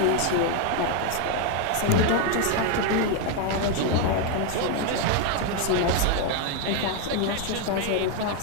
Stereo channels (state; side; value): different; both; correlation 0.01